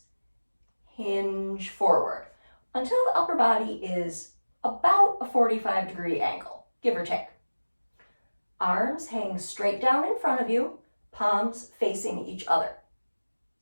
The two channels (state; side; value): inverted; both; correlation -1.00